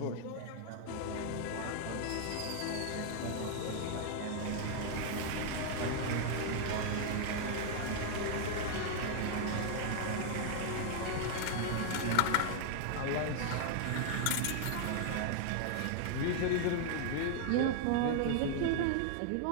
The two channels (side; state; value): both; different; correlation 0.00